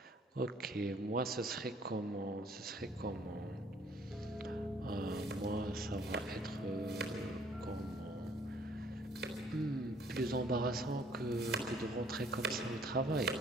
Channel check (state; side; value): normal; both; correlation 0.60